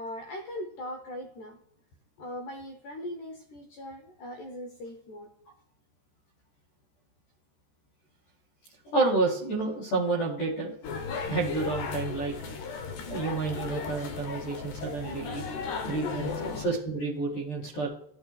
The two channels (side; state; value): right; late; 14 ms